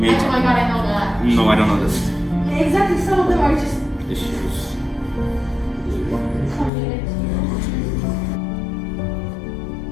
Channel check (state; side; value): drops out; right; at 6.7 s